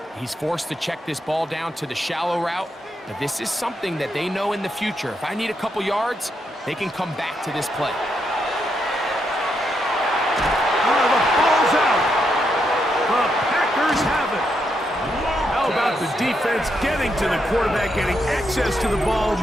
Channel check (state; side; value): normal; both; correlation 0.80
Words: he's forced to check this ball down to the shallow route. But this is something that they know in the future. If I need a couple yards, they can come back to this play. The ball's out. The Packers have it. How about the defense getting to the quarterback, getting access to the ball,